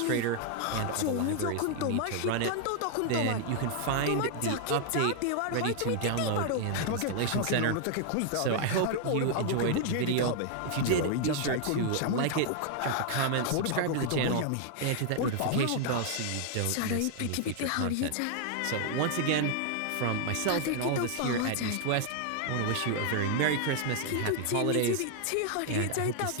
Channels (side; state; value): both; different; correlation 0.00